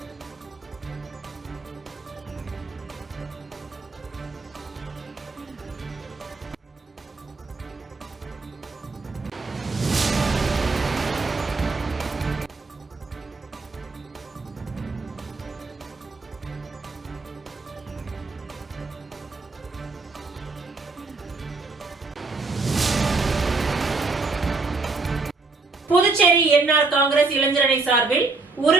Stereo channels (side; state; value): left; quieter; 3.8 dB